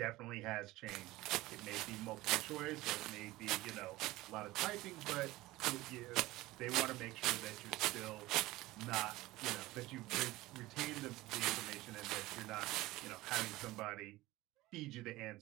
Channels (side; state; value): left; quieter; 18.6 dB